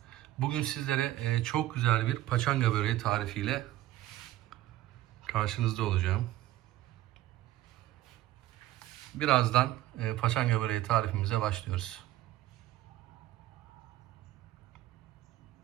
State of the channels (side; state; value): left; quieter; 14.9 dB